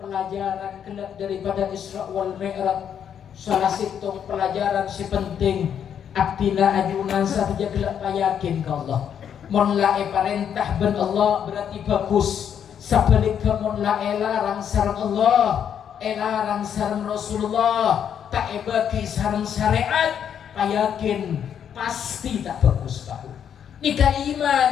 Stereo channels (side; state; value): right; quieter; 8.6 dB